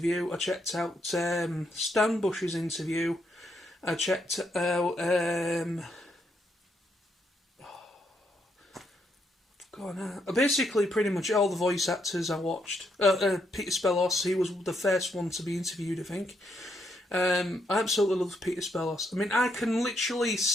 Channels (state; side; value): normal; both; correlation 0.76